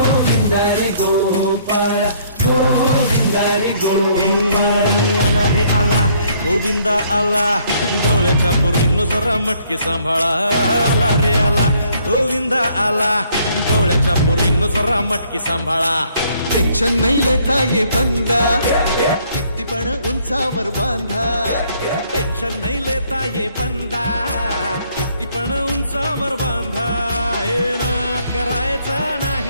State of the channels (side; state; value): both; inverted; correlation -0.65